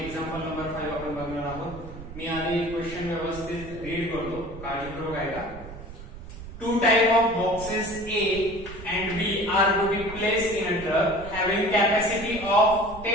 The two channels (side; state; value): right; noise; rumble, 13 dB below the sound